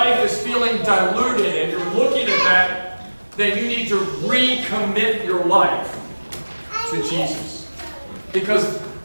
is feeling diluted and you're looking at that, then you need to recommit your life to Jesus. Because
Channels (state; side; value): inverted; both; correlation -1.00